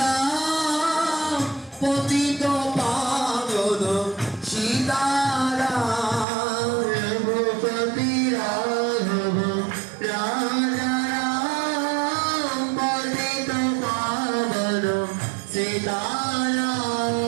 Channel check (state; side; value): drops out; left; at 6.2 s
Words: পতিত পাবন সীতারাম রঘুপতি রাঘব রাজা রাম পতিত পাবন সীতারাম